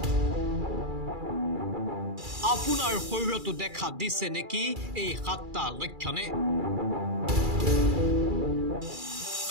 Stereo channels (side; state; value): left; late; 2.3 ms